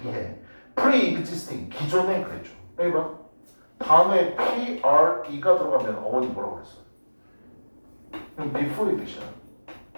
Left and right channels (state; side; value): inverted; both; correlation -1.00